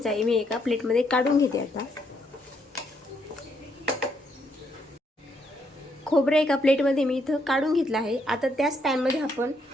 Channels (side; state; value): both; normal; correlation 0.74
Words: आहे। मी एका प्लेटमध्ये काढून घेते। आता खोबरं एका प्लेटमध्ये मी इथं काढून घेतलं आहे। आता त्याच पॅनमध्ये आपण